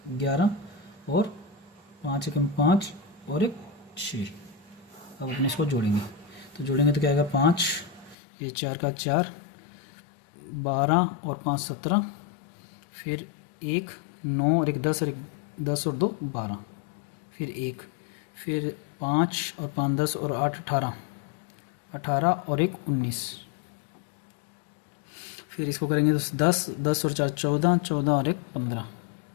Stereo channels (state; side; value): drops out; right; at 8.2 s